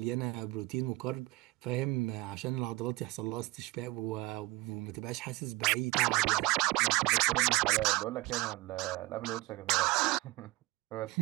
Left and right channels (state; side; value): quieter; left; 21.3 dB